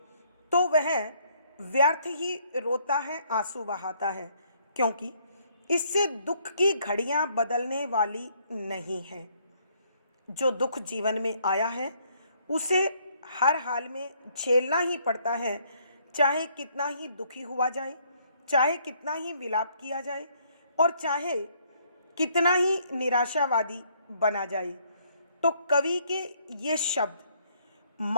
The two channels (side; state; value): both; inverted; correlation -0.67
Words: तो वह व्यर्थ ही रोता है, आंसू बहाता है, क्योंकि इससे दुख की घड़ियां बदलने वाली नहीं है। जो दुख जीवन में आया है उसे हर हाल में झेलना ही पड़ता है, चाहे कितना ही दुखी हुआ जाए, चाहे कितना ही विलाप किया जाए और चाहे कितना ही निराशावादी बना जाए। तो कवि के ये शब्द